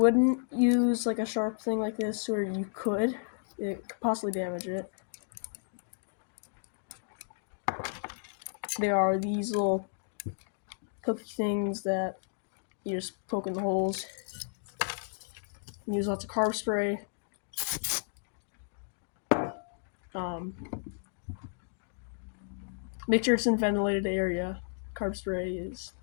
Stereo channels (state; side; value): silent; right; digital silence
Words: use like a sharp thing like this, or you could. It could possibly damage it. There are these little pokey things that you just poke in the holes. You use lots of carb spray. Make sure it's in a ventilated area. Carb spray is